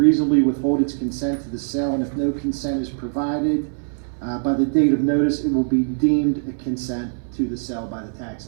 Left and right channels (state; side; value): silent; left; 64 dB below the other